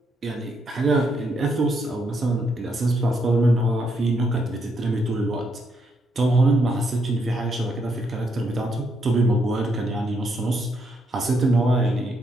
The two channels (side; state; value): both; normal; correlation 0.77